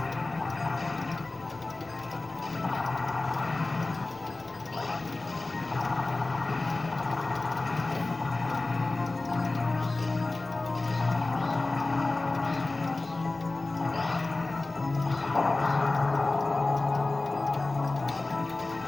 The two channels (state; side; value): quieter; right; 3.2 dB